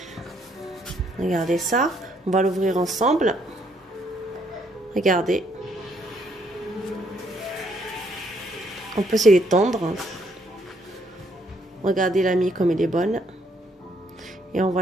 Regardez ça. On va l'ouvrir ensemble. Regardez. On peut se l'étendre. Regardez la mie comme elle est bonne. Et on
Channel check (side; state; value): both; normal; correlation 0.70